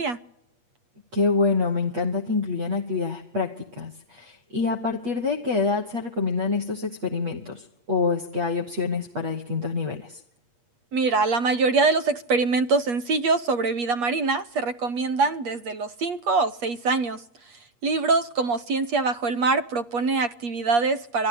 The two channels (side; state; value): left; late; 8.4 ms